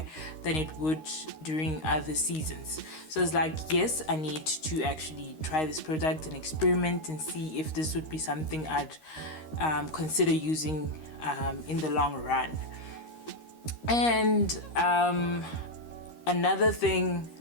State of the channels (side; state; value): right; late; 13 ms